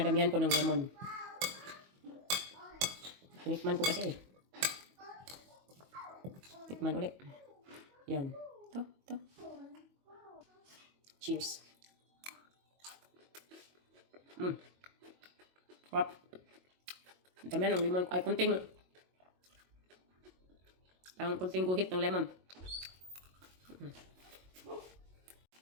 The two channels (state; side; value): late; left; 22 ms